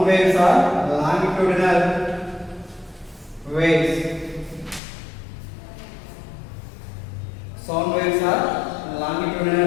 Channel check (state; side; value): drops out; right; at 4.8 s